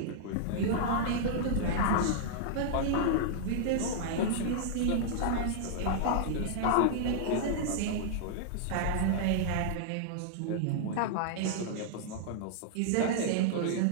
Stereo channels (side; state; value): both; different; correlation -0.01